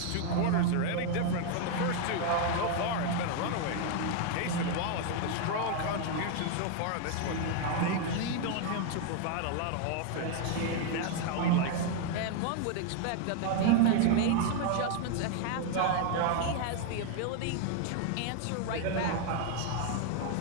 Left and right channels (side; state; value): both; different; correlation 0.00